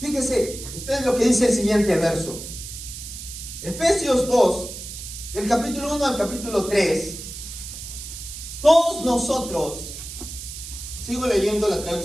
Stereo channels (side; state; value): right; noise; hiss, 10 dB below the sound